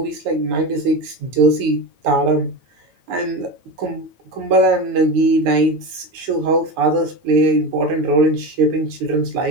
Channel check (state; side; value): late; left; 9.5 ms